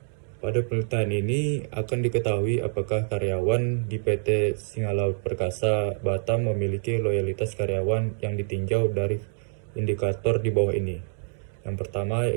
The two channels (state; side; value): silent; left; digital silence